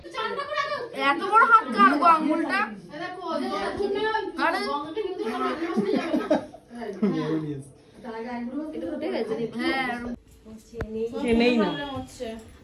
এত বড় হাত কার গো আঙ্গুলটা? নেই না,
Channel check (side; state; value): both; identical; correlation 1.00